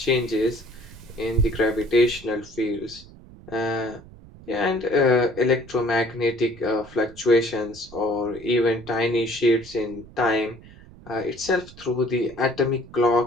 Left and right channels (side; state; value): right; noise; rumble, 20 dB below the sound